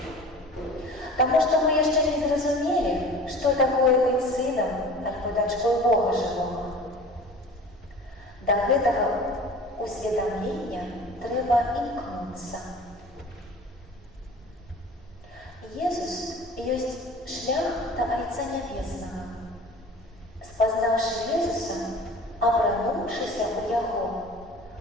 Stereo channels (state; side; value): normal; both; correlation 0.41